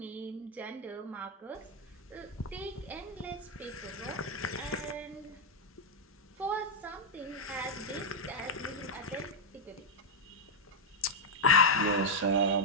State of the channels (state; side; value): normal; both; correlation -0.02